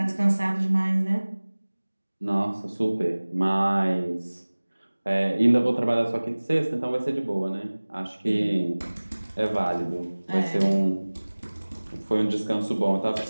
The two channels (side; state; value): both; inverted; correlation -1.00